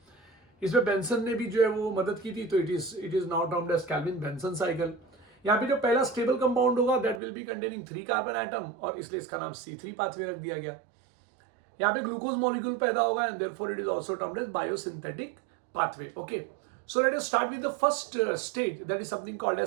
इसमें बेंसन ने भी जो है वो मदद की थी, तो it is now termed as Calvin Benson cycle. यहाँ पे जो पहला स्टेबल कंपाउंड होगा that will be containing 3 carbon atom, और इसलिए इसका नाम C3 पाथवे रख दिया गया. यहाँ पे ग्लूकोज मॉलिक्यूल पैदा होगा and therefore it is also termed as biosynthetic pathway. Okay so let us start with the first stage that is something called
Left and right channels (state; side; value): drops out; left; at 7.2 s